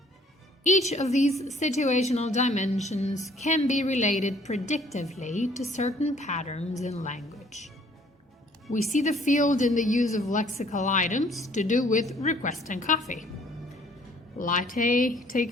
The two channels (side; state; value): both; normal; correlation 0.59